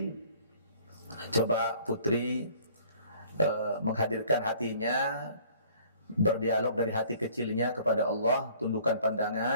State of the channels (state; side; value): inverted; both; correlation -0.54